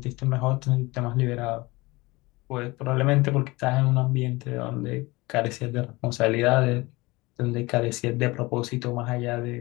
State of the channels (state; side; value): quieter; right; 22.5 dB